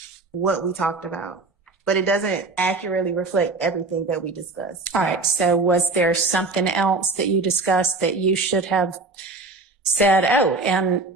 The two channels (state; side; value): quieter; left; 3.6 dB